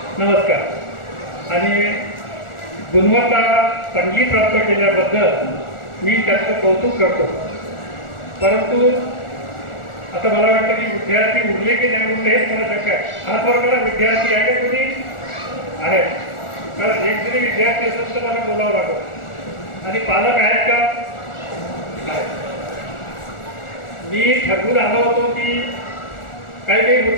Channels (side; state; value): right; late; 1.4 ms